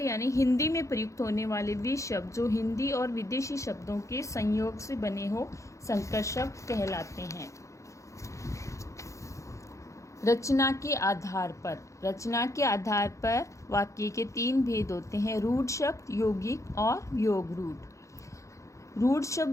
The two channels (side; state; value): right; late; 0.15 ms